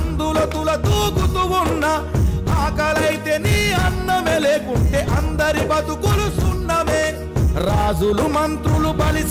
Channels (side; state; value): both; identical; correlation 1.00